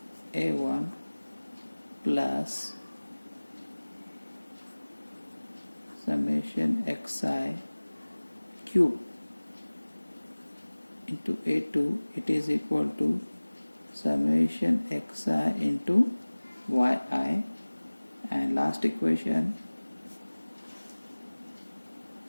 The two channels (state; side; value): inverted; both; correlation -1.00